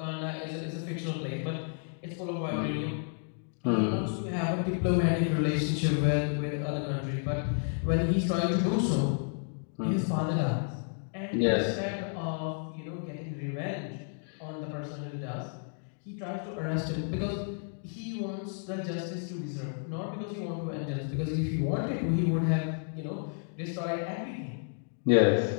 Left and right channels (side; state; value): right; silent; 57 dB below the other